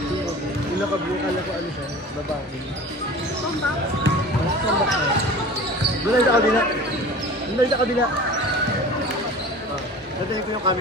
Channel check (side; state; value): both; normal; correlation 0.39